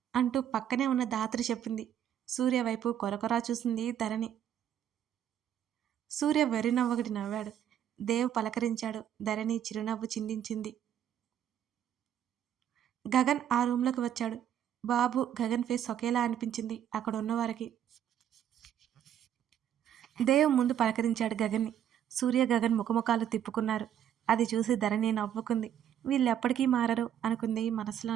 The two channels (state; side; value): quieter; left; 10.0 dB